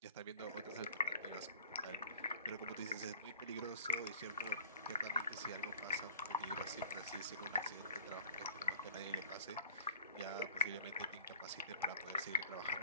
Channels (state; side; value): inverted; both; correlation -0.45